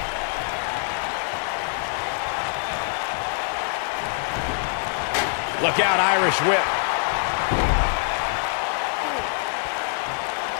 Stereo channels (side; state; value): right; silent; 55 dB below the other